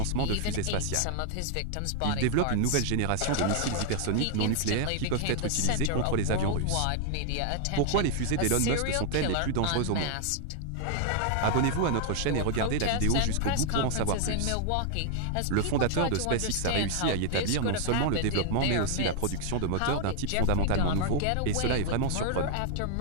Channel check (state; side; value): different; both; correlation 0.00